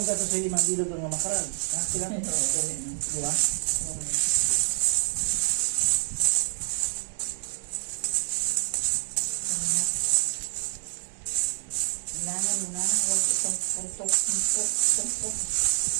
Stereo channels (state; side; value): silent; left; digital silence